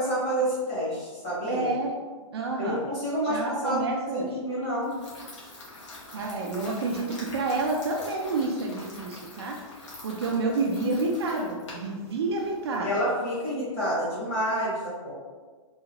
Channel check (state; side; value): normal; both; correlation -0.07